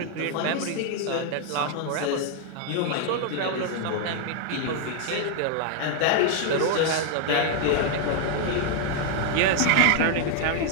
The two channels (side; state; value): both; different; correlation 0.00